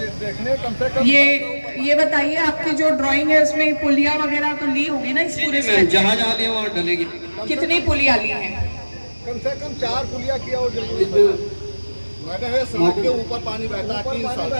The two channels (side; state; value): both; inverted; correlation -1.00